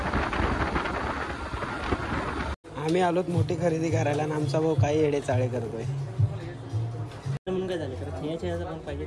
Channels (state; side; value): identical; both; correlation 1.00